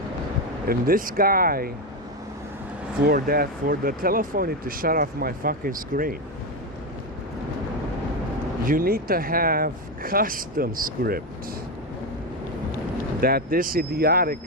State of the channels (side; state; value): both; normal; correlation 0.11